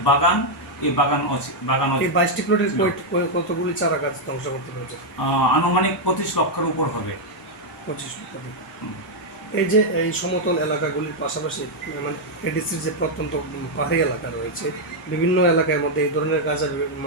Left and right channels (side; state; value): both; normal; correlation -0.01